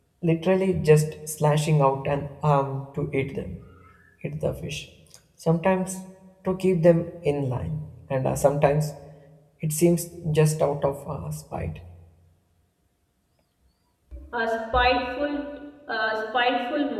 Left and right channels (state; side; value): identical; both; correlation 1.00